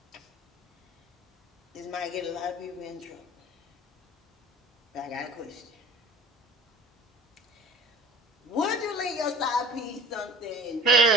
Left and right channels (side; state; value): both; normal; correlation 0.40